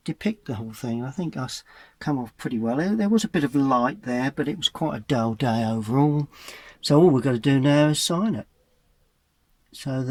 depict the whole thing. I think us come off pretty well. There was a bit of light there, but it was quite a dull day overall. So all we've got to do now is sign it, so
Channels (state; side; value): identical; both; correlation 1.00